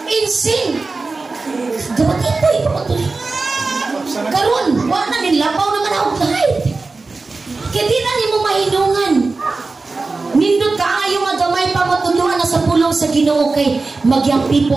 Insing. Dapat ito ipapatuloy. Karon, wala na nilapaw naman ako kahit. Kaya di na ni mo mahinungan. Nindot ka ayaw nga gamay pa matuluan na sa pulong sa Ginoo kay magyang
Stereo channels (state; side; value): quieter; left; 3.8 dB